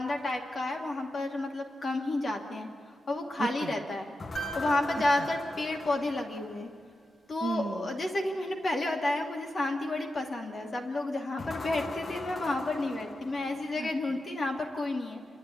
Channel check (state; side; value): normal; both; correlation 0.90